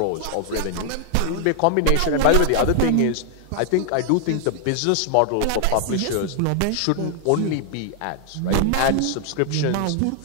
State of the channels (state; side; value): different; both; correlation 0.00